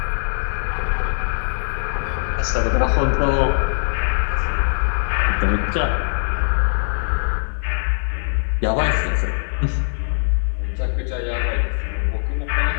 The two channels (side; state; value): right; silent; 65 dB below the other